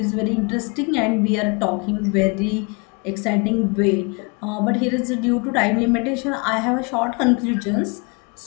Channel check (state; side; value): quieter; right; 31.5 dB